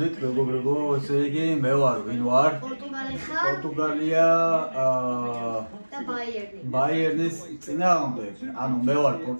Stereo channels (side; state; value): both; inverted; correlation -1.00